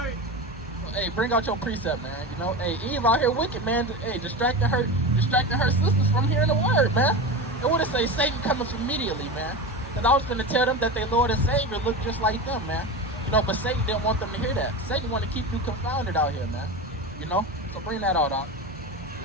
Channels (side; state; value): both; normal; correlation 0.24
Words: So, hey, bring out your precept, man. You know, hey, Eve out here wicked, man. Hey, distracting her sisters from hearing the word, man. It would have say Satan coming immediately, man. And I was going to tell them that their Lord and Savior looked just like them, man. You know, but Satan didn't want them to hear that. Satan wanted to keep you confounded out here, man. You know? So bring that out, Doc.